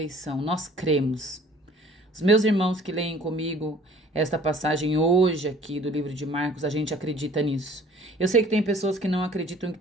nós cremos. Os meus irmãos que leem comigo esta passagem hoje aqui do livro de Marcos, a gente acredita nisso. Eu sei que tem pessoas que não acreditam que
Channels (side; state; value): both; normal; correlation 0.52